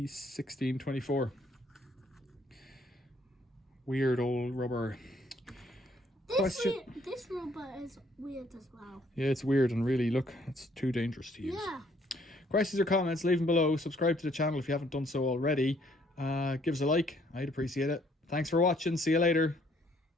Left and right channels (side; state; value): both; normal; correlation 0.65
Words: Weird old rubber. This rubber is weird as well. Yeah, it's weird and really, look, it's too dangerous to use. Yeah. Questions or comments, leave them below. Subscribe to the channel if you haven't done so already. Give us a like. I'd appreciate it. Thanks for watching. See you later.